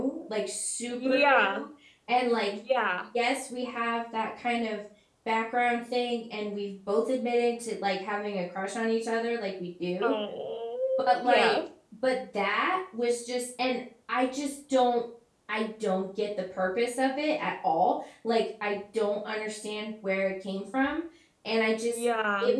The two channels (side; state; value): both; identical; correlation 1.00